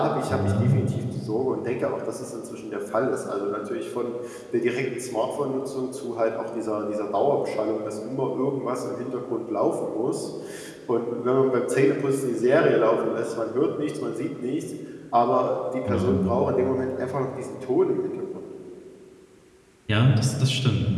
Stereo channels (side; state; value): both; identical; correlation 1.00